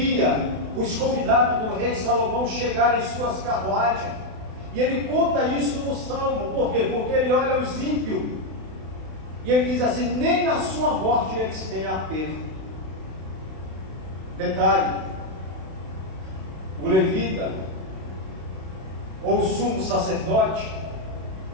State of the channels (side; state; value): left; late; 32 ms